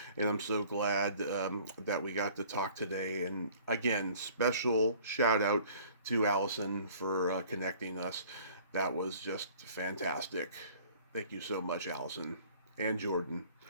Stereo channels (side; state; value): both; inverted; correlation -0.52